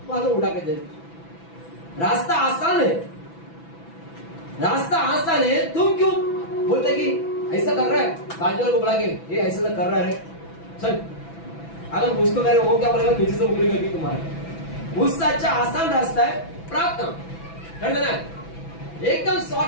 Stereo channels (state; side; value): late; right; 6.0 ms